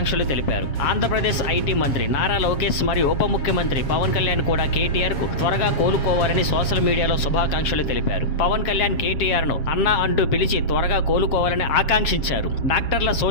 తెలిపారు. ఆంధ్రప్రదేశ్ ఐటీ మంత్రి నారా లోకేష్ మరియు ఉప ముఖ్యమంత్రి పవన్ కళ్యాణ్ కూడా కేటీఆర్ కు త్వరగా కోలుకోవాలని సోషల్ మీడియాలో శుభాకాంక్షలు తెలిపారు. పవన్ కళ్యాణ్ కేటీఆర్ ను అన్నా అంటూ పిలిచి త్వరగా కోలుకోవాలని ఆకాంక్షించారు. డాక్టర్ల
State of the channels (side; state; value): right; late; 7.3 ms